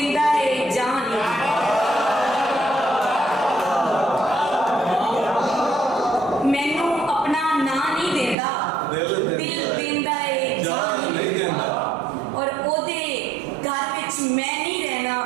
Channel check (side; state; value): left; drops out; at 8.3 s